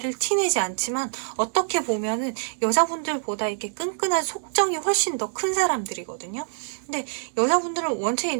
티내지 않지만, 어떻게 보면은 여자분들보다 이렇게 끈끈한 속정이 훨씬 더 큰 사람들이거든요. 근데 여자분들은 원체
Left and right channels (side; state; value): left; silent; digital silence